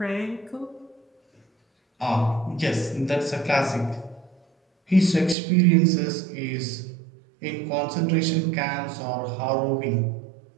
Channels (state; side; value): drops out; left; at 5.4 s